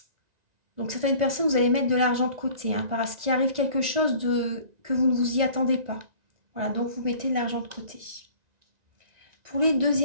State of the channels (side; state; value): left; late; 1.9 ms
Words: donc certaines personnes, vous allez mettre de l'argent de côté, hein, parce qu'il arrive quelque chose que vous ne vous y attendez pas. Voilà, donc vous mettez de l'argent de côté. Pour les